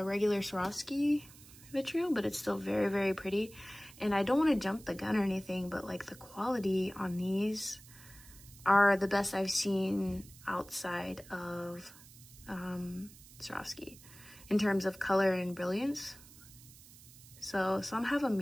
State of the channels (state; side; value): noise; right; hiss, 21 dB below the sound